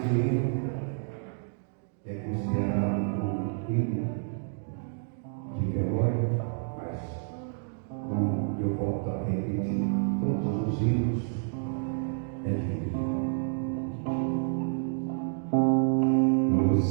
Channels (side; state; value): left; silent; digital silence